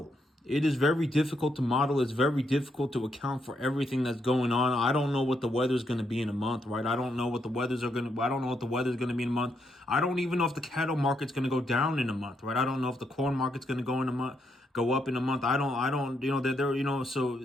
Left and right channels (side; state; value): both; normal; correlation 0.78